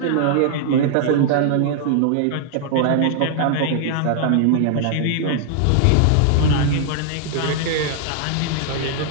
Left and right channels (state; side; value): different; both; correlation -0.01